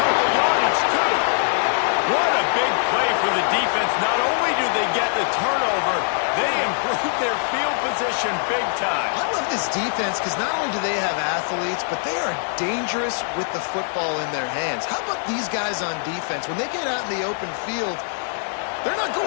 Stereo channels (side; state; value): right; silent; digital silence